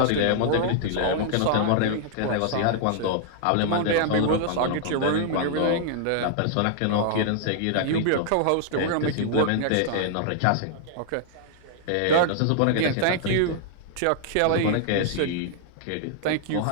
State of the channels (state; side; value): different; both; correlation -0.01